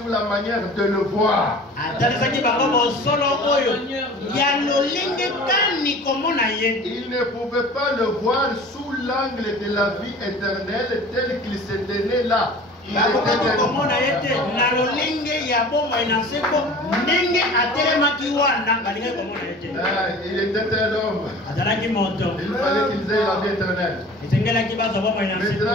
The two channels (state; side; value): normal; both; correlation 0.42